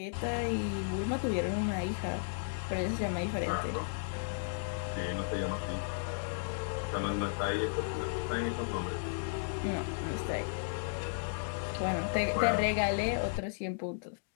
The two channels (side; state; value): right; silent; digital silence